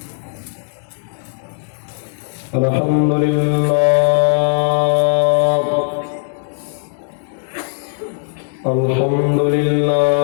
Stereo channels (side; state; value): right; silent; digital silence